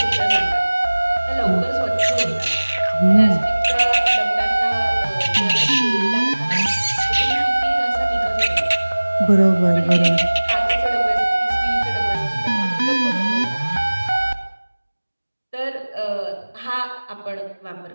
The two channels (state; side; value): inverted; both; correlation -1.00